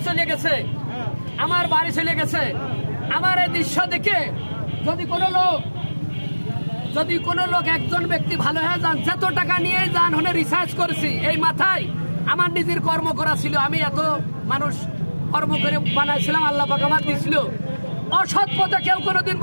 চলে গেছে, আমার বাড়ি চলে গেছে। আমার এই দৃশ্য দেখে যদি কোনো লোক একজন ব্যক্তি ভালো হয়ে যান, যত টাকা নিয়ে যান হলে রিসার্চ করেছি এই মাথায় আমার নিজের কর্ম করা ছিল। আমি এত মানুষ কর্ম করে বানাইছিলাম, আল্লাহ পাক আমার দিয়েছিল। অসৎ পথে কেউ কোনোদিন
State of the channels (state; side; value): inverted; both; correlation -1.00